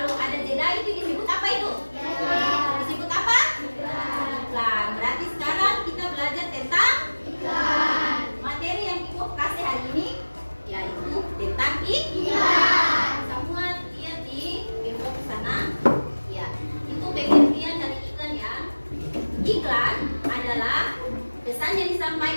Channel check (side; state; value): both; inverted; correlation -1.00